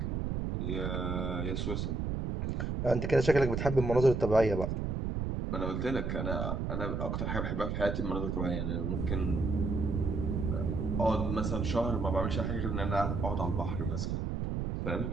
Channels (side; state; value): right; noise; rumble, 1 dB below the sound